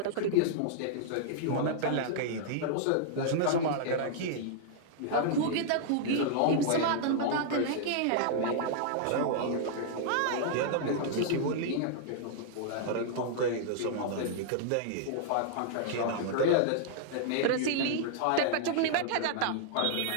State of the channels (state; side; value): different; both; correlation -0.01